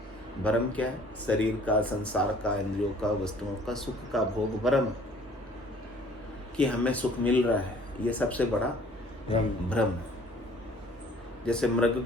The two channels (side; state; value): both; normal; correlation 0.54